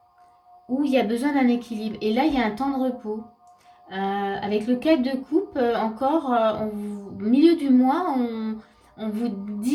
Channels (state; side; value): identical; both; correlation 1.00